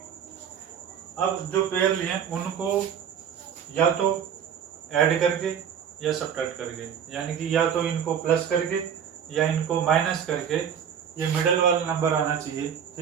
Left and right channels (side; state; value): left; quieter; 8.2 dB